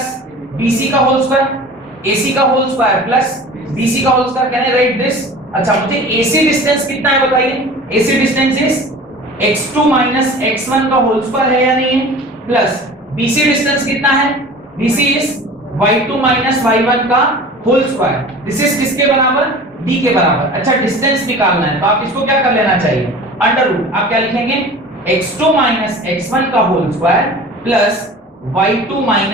बीसी का होल स्क्वायर, एसी का होल स्क्वायर प्लस बीसी का whole square. Can I write this? अच्छा, मुझे एसी डिस्टेंस कितना है बताइए। AC distance is x2 minus x1 का होल स्क्वायर है या नहीं है, प्लस BC डिस्टेंस कितना है, BC is y2 minus y1 का होल स्क्वायर। दिस इज किसके बराबर? d के बराबर। अच्छा, डिस्टेंस निकालना है तो आप इसको क्या कर लेना चाहिए, अंडर रूट। आप क्या लिखेंगे, x2 माइनस x1 का whole square plus y2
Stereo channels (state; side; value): normal; both; correlation 0.40